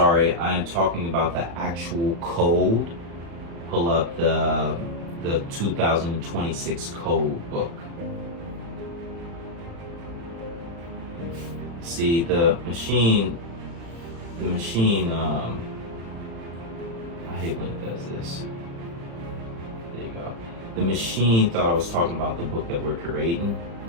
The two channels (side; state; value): left; late; 35 ms